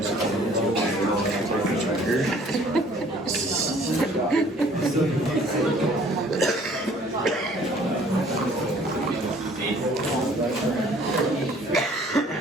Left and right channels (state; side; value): normal; both; correlation 0.55